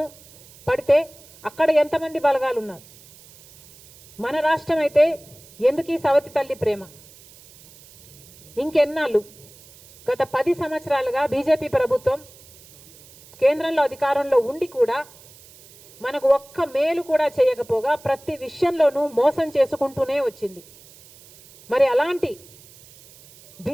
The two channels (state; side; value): noise; right; hiss, 23 dB below the sound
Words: పడితే అక్కడ ఎంతమంది బలగాలు ఉన్నారు? మన రాష్ట్రం అయితే ఎందుకు ఈ సవతి తల్లి ప్రేమ? ఇంకెన్నాళ్ళు? గత 10 సంవత్సరాలుగా బీజేపీ ప్రభుత్వం కేంద్రంలో అధికారంలో ఉండి కూడా మనకు ఒక్క మేలు కూడా చేయకపోగా ప్రతి విషయంలోనూ మోసం చేసుకుంటూనే వచ్చింది. మరి అలాంటి